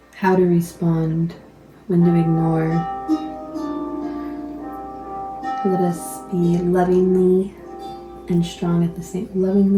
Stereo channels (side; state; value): both; identical; correlation 1.00